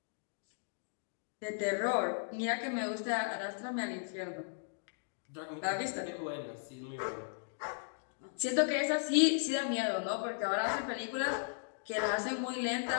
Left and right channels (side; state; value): right; silent; digital silence